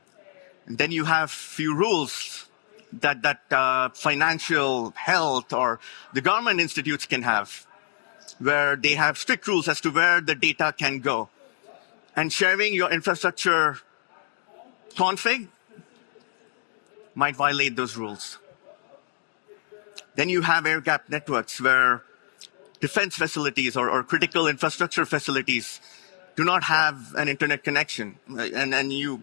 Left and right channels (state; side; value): silent; right; digital silence